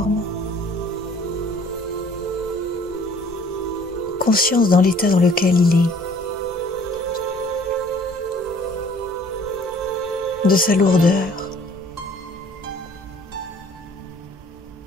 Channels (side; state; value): both; normal; correlation 0.55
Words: conscience dans l'état dans lequel il est, de sa lourdeur,